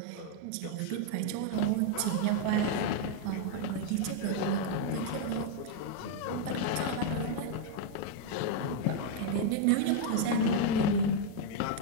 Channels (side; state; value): both; different; correlation 0.00